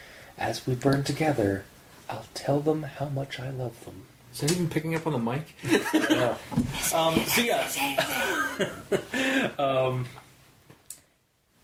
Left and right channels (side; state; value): both; identical; correlation 1.00